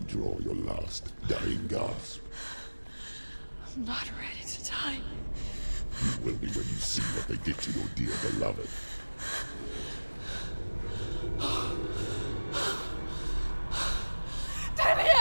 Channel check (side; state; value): both; inverted; correlation -1.00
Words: draw your last dying gasp. I'm not ready to die. You will be when you see what they did to your dear beloved.